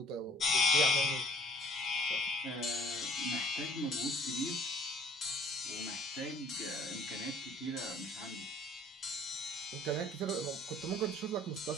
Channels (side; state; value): both; normal; correlation 0.52